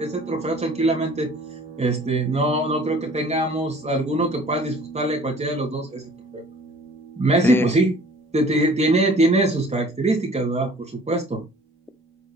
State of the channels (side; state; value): both; normal; correlation 0.50